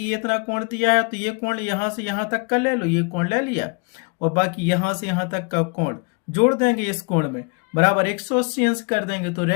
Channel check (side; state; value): right; quieter; 33.3 dB